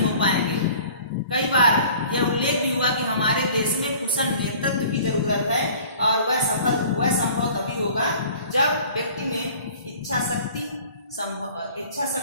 हो पाएंगे। कई बार यह उल्लेख भी हुआ कि हमारे देश में कुशल नेतृत्व की जरूरत है और वह संभव तभी होगा जब व्यक्ति में इच्छा शक्ति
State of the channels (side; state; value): both; inverted; correlation -0.48